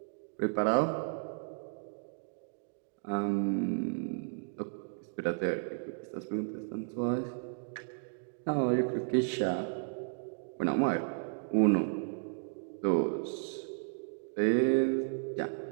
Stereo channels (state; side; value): silent; left; digital silence